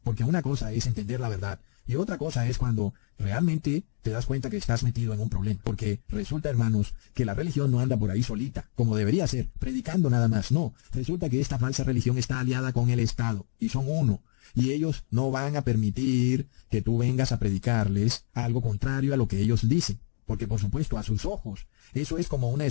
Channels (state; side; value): silent; right; digital silence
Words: porque una cosa es entender la verdad, y otra cosa es cuando realmente te das cuenta que estás metido en un problema, porque resulta, hermanos, que la religión no anda por ahí solita, como debería ser, predicando nada más, no, resulta que esta falsa religión está aliada con el Estado, y son uno, y ellos no van a permitir que tú vengas a predicarles algo contrario a lo que ellos dicen. Porque por supuesto a sus ojos eso es como una